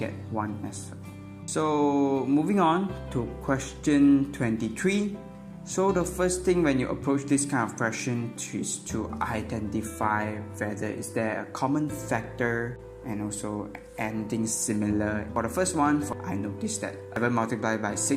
1 as well. So moving on to question 23. So the first thing when you approach this kind of question is to identify whether is there a common factor and also anything similar. For the first one, I noticed that 7 multiplied by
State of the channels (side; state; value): both; identical; correlation 1.00